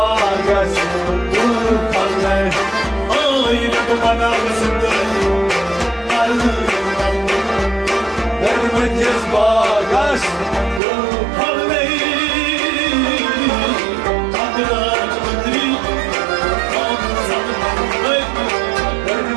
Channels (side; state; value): left; drops out; at 10.8 s